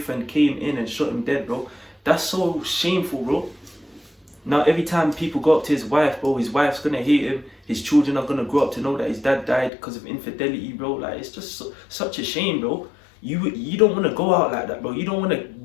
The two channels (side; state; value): right; drops out; at 9.7 s